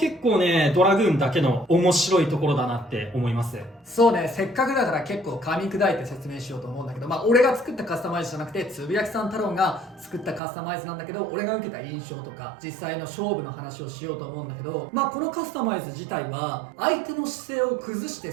構ね、ドラグーンだけの面白いところだなって思います。そうね、せっかくだから結構噛み砕いて説明しようと思うんだけど、俺が作ったカスタマイズじゃなくてつぶやきさん太郎が作ったカスタマイズなんだけど、俺が受けた印象とか実際の勝負の話をしようと思うんだけど、このカスタマイズ自体は相手の姿勢を崩して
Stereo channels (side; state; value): left; drops out; at 10.4 s